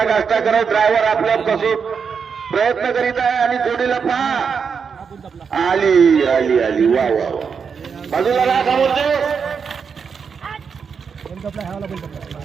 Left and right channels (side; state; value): left; quieter; 6.2 dB